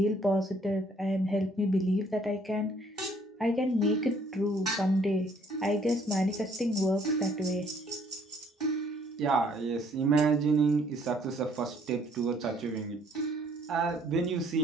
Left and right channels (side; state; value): both; normal; correlation 0.63